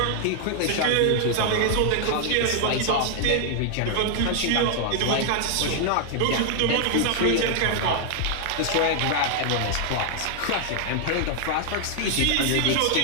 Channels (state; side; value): different; both; correlation 0.00